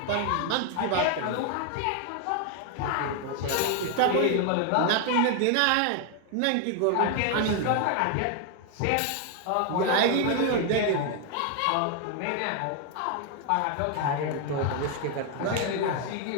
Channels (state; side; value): different; both; correlation 0.00